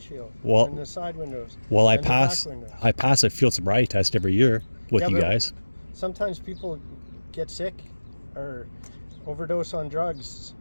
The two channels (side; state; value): both; inverted; correlation -1.00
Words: and the side windows. Well, I and the pass back windows. I pass a field sobriety test every year with you but guys. Sometimes people get sick or overdose on drugs.